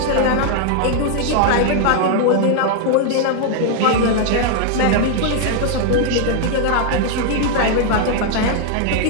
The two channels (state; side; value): different; both; correlation 0.00